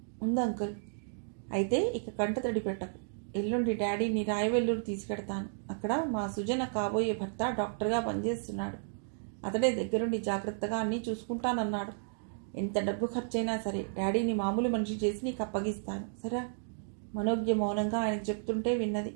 ఉంది అంకుల్. అయితే ఇక కంట తడి పెట్టకు. ఎల్లుండి డాడీని రాయవెల్లూరు తీసుకెడతాను. అక్కడ మా సుజన కాబోయే భర్త డాక్టర్గా పనిచేస్తున్నాడు. అతడే దగ్గరుండి జాగ్రత్తగా అన్నీ చూసుకుంటానన్నాడు. ఎంత డబ్బు ఖర్చైనా సరే డాడీని మామూలు మనిషి చేసి నీకు అప్పగిస్తాను, సరే? మనోజ్ఞ మౌనంగా ఆయనకు చెప్తుంటే విన్నది.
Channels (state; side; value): silent; left; digital silence